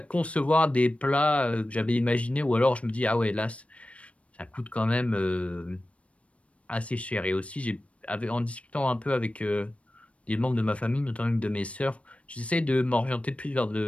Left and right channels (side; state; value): right; late; 0.063 ms